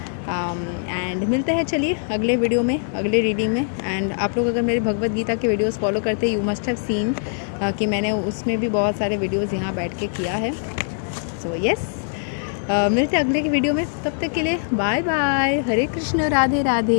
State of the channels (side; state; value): right; silent; digital silence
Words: एंड मिलते हैं चलिए अगले वीडियो में, अगले रीडिंग में। एंड आप लोग अगर मेरे भगवत गीता के वीडियोस फॉलो करते हैं, यू मस्ट हैव सीन कि मैंने उसमें भी बहुत सारे वीडियोस यहाँ बैठ के किया है। सो येस, मिलते हैं अगले की वीडियो में। तब तक के लिए बाय बाय। हरे कृष्ण, राधे